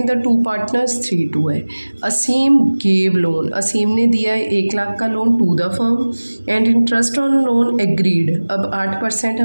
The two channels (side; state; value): both; inverted; correlation -1.00